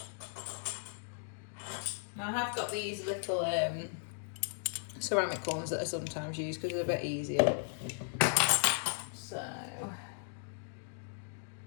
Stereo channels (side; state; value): right; silent; digital silence